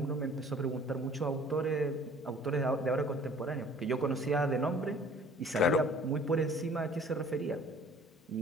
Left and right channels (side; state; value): both; normal; correlation 0.51